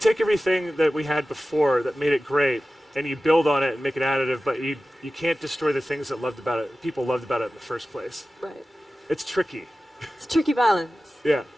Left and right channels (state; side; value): normal; both; correlation 0.96